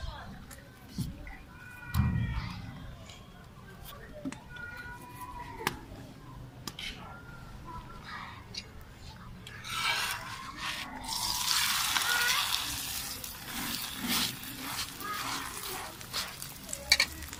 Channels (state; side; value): identical; both; correlation 1.00